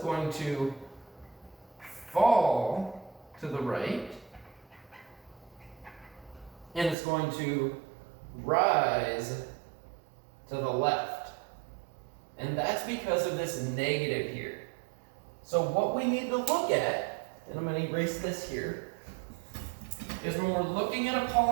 to fall to the right and it's going to rise to the left. And that's because of this negative here. So what we need to look at, and I'm going to erase this here, is when we're looking at a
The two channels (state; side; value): drops out; left; at 7.0 s